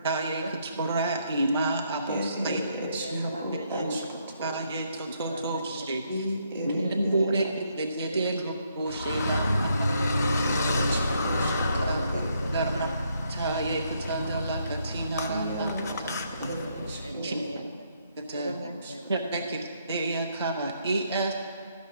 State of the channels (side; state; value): both; inverted; correlation -0.73